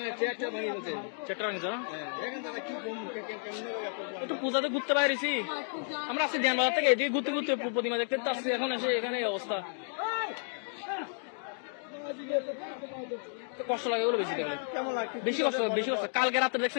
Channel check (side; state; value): right; silent; 56 dB below the other